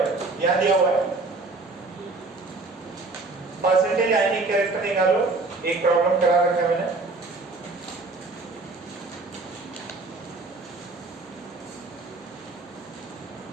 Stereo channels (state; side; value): quieter; left; 3.5 dB